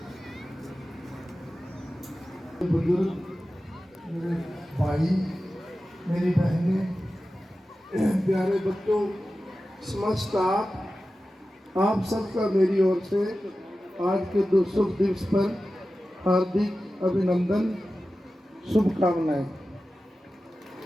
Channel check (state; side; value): normal; both; correlation 0.94